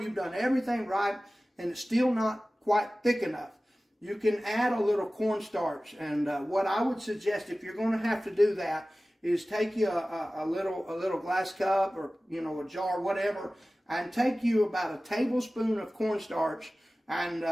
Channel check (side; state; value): both; normal; correlation 0.97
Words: you've done everything right and it's still not quite thick enough, you can add a little cornstarch. And what I would suggest, if you're going to have to do that, is take you a little glass cup, or you know, a jar, whatever, and take you about a tablespoon of cornstarch, and